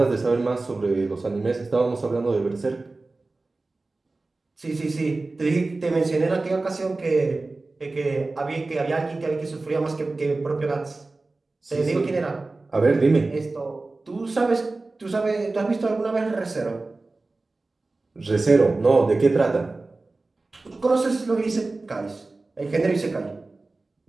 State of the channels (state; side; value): quieter; left; 3.4 dB